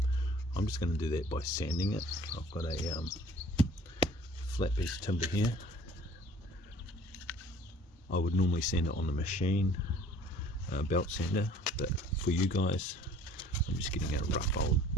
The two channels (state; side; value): normal; both; correlation 0.51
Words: I'm just going to do that by sanding it. I've got a flat piece of timber here. I would normally sand it on the machine, belt sander, but for you guys, I'm just getting a rough old